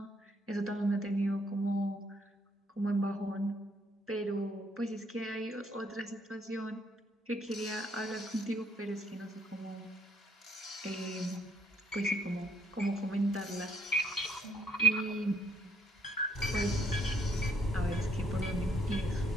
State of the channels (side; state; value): both; normal; correlation 0.68